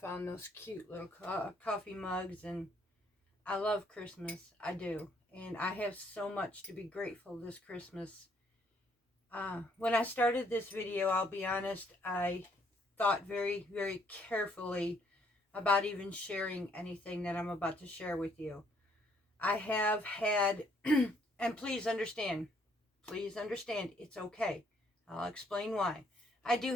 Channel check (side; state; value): both; normal; correlation 0.67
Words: those cute little coffee mugs, and I love Christmas. I do. And I have so much to be grateful this Christmas. When I started this video, I'll be honest, I thought very, very carefully about even sharing anything that I'm about to share with you. I have had, and please understand, it's okay. I'll explain why. I do